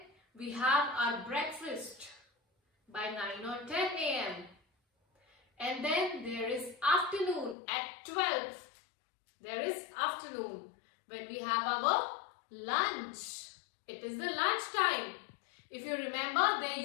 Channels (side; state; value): right; drops out; at 7.6 s